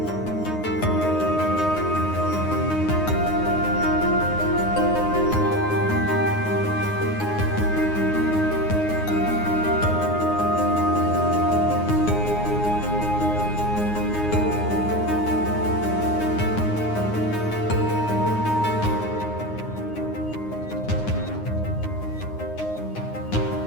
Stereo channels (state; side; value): late; right; 9.6 ms